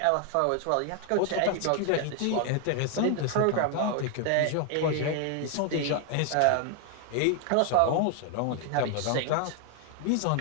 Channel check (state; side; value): different; both; correlation 0.00